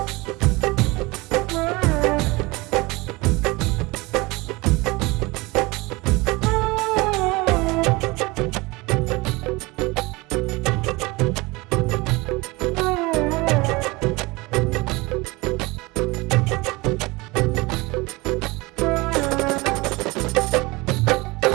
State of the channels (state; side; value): quieter; left; 23.4 dB